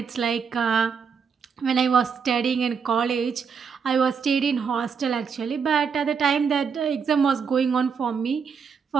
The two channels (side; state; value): left; quieter; 6.2 dB